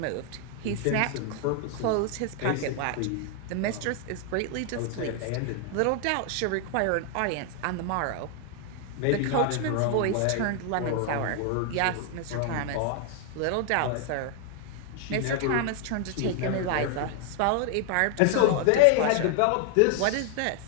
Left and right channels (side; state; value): both; different; correlation 0.00